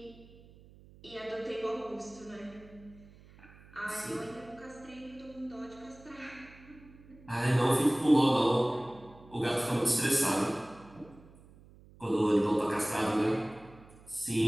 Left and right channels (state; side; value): noise; right; hum, 23 dB below the sound